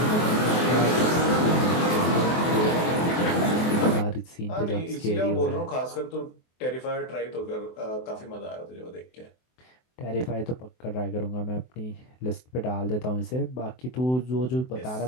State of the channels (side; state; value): right; late; 24 ms